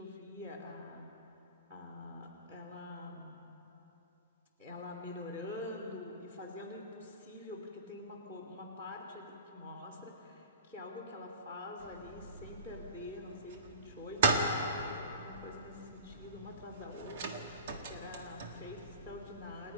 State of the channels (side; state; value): both; inverted; correlation -0.38